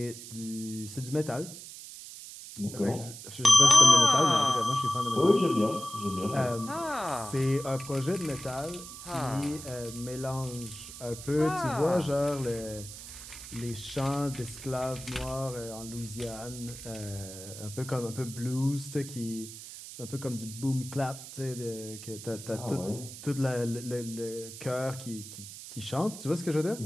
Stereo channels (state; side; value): noise; right; hiss, 13 dB below the sound